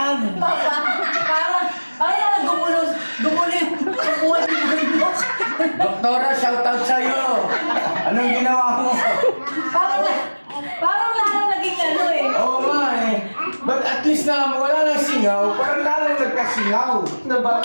Parang gumulo yung buwan ng bundok. Doktora, shoutout sa'yo. Anong ginawa mo? Parang lang naging ano eh. Oo nga eh. But at least na wala nang singaw, parang lalong nagkasingaw.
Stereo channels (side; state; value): both; inverted; correlation -1.00